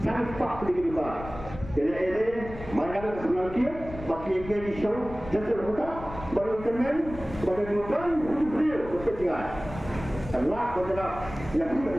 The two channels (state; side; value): noise; left; rumble, 13 dB below the sound